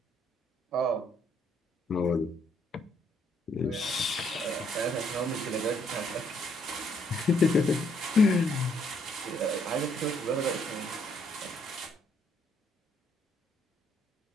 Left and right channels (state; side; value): normal; both; correlation 0.69